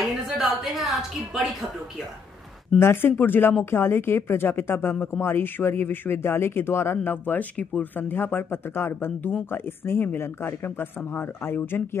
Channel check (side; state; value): right; quieter; 5.6 dB